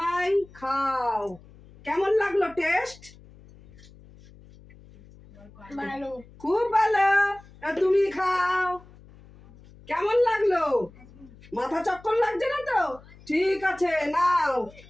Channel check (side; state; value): left; noise; hum, 23 dB below the sound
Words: খাও, কেমন লাগলো টেস্ট? ভালো। খুব ভালো। তুমি খাও, কেমন লাগলো? মাথা চক্কর লাগছে না তো? ঠিক আছে, নাও